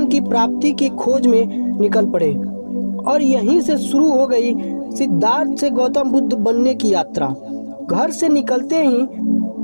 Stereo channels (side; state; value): both; inverted; correlation -1.00